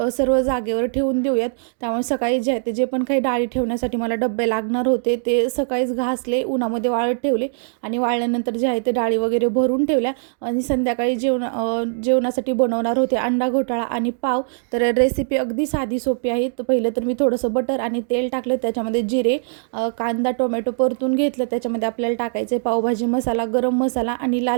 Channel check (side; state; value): left; silent; 65 dB below the other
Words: सर्व जागेवर ठेवून देऊयात. त्यामुळे सकाळी जे आहे ते जे पण काही डाळी ठेवण्यासाठी मला डब्बे लागणार होते ते सकाळीच घासले, उन्हामध्ये वाळत ठेवले. आणि वाळल्यानंतर जे आहे ते डाळी वगैरे भरून ठेवल्या. आणि संध्याकाळी जेवणासाठी बनवणार होते अंडा घोटाळा आणि पाव. तर रेसिपी अगदी साधी सोपी आहे. तर पहिलं तर मी थोडंसं बटर आणि तेल टाकलं, त्याच्यामध्ये जिरे, कांदा टोमॅटो परतून घेतलं. त्याच्यामध्ये आपल्याला टाकायचे पावभाजी मसाला, गरम मसाला आणि